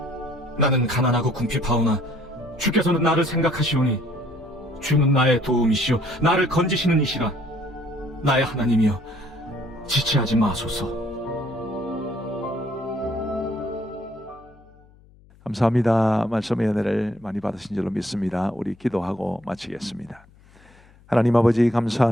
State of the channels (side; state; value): left; noise; hum, 27 dB below the sound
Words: 나는 가난하고 궁핍하오나 주께서는 나를 생각하시오니 주는 나의 도움이시오 나를 건지시는 이시라. 나의 하나님이여, 지체하지 마소서. 감사합니다. 말씀의 은혜를 많이 받으신 줄로 믿습니다. 우리 기도하고 마치겠습니다. 하나님 아버지